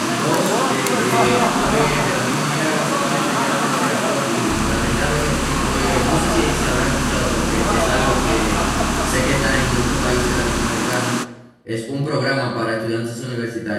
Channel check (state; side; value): identical; both; correlation 1.00